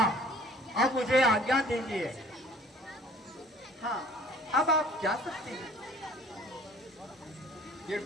अब मुझे आज्ञा दीजिए। हाँ, अब आप जा सकते हैं।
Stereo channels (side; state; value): both; normal; correlation 0.52